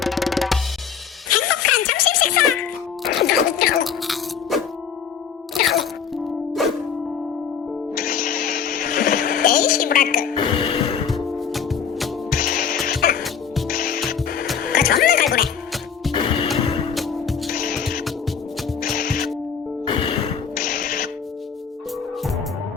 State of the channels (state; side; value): quieter; right; 7.1 dB